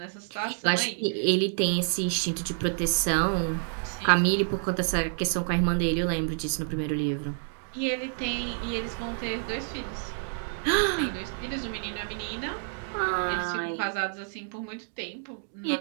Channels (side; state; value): left; silent; digital silence